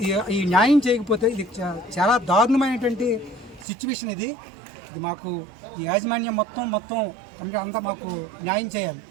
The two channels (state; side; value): drops out; left; at 3.7 s